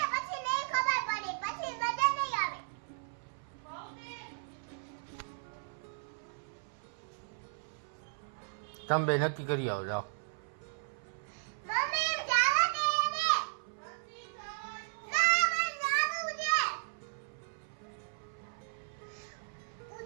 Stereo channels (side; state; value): left; silent; 54 dB below the other